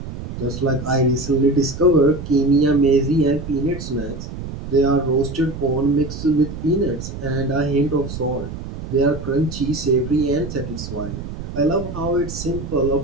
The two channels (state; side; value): noise; right; rumble, 9 dB below the sound